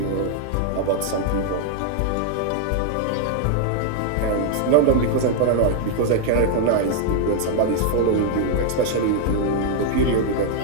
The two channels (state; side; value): different; both; correlation 0.00